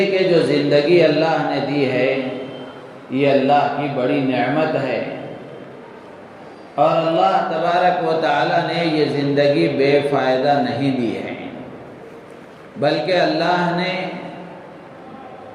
کہ جو زندگی اللہ نے دی ہے یہ اللہ کی بڑی نعمت ہے، اور اللہ تبارک و تعالی نے یہ زندگی بے فائدہ نہیں دی ہے، بلکہ اللہ نے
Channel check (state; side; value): identical; both; correlation 1.00